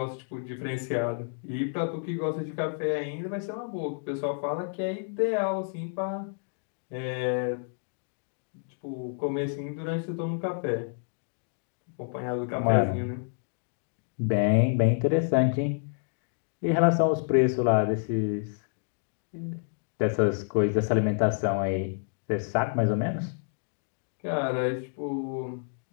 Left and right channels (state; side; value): silent; right; digital silence